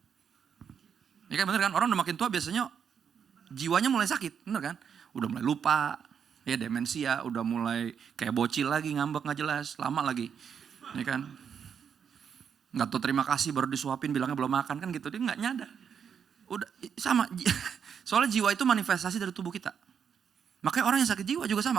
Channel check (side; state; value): left; quieter; 7.4 dB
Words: Ya kan bener kan? Orang udah makin tua biasanya jiwanya mulai sakit. Bener kan? Udah mulai lupa. Ya demensia, udah mulai kayak bocil lagi, ngambek gak jelas, lama lagi. Ya kan? Gak tahu terima kasih baru disuapin bilangnya belum makan kan gitu. Dia gak nyadar. Udah sama. Soalnya jiwa itu manifestasi dari tubuh kita. Makanya orang yang sakit jiwa juga sama.